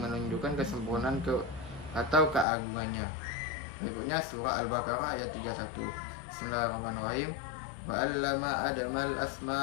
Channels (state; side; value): drops out; right; at 2.5 s